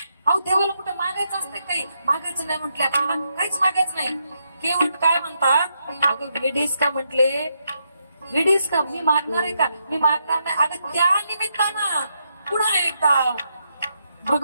अहो देवाला कुठे मागायचं असतं? काही मागायचं नाही म्हटले, आपल्याला काहीच मागायचं नाही. केवट काय म्हणतात? अगं वेडीस का म्हटले, वेडीस का? मी मागणार आहे का? मी मागणार नाही. अगं त्या निमित्तानं पुन्हा एकदा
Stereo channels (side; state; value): both; inverted; correlation -0.81